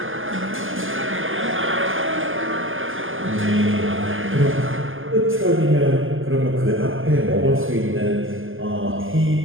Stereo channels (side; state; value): left; late; 0.59 ms